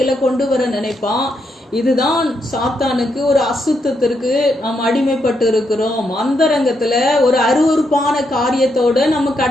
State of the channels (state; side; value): normal; both; correlation 0.79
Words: கொண்டு வர நினைப்பான். இதுதான் சாத்தானுக்கு ஒரு அசுத்தத்திற்கு நாம் அடிமைப்பட்டு இருக்கிறோம். அந்தரங்கத்துல ஒரு அருவருப்பான காரியத்தோட நம்ம